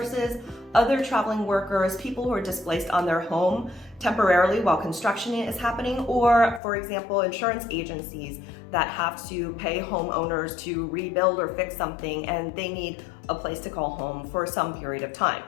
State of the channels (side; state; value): right; drops out; at 6.6 s